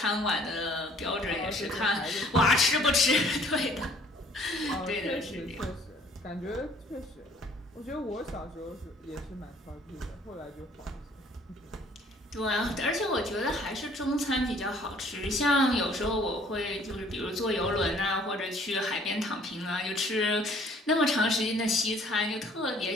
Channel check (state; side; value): normal; both; correlation 0.57